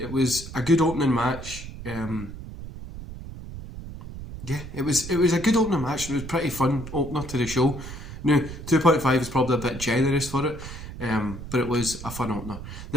was a good opening match. It was a good opening match. It was a pretty fun opener to the show. Now, 2.5 is probably a bit generous for it, but it was a fun opener.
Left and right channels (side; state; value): right; noise; rumble, 11 dB below the sound